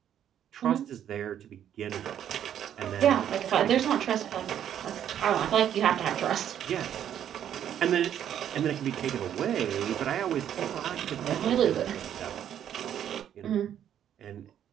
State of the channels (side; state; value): left; quieter; 10.0 dB